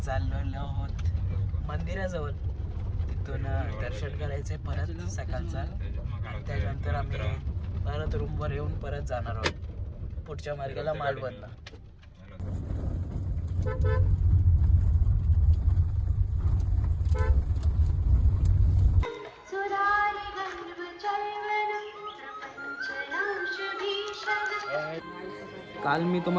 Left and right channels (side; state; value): both; identical; correlation 1.00